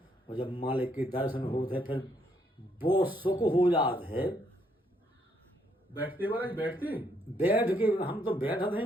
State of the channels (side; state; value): both; normal; correlation 0.72